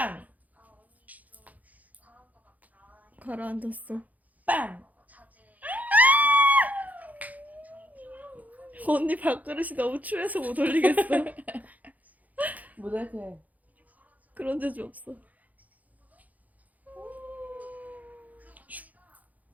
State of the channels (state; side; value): late; left; 0.078 ms